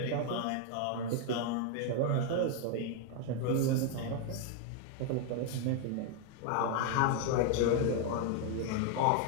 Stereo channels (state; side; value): different; both; correlation 0.01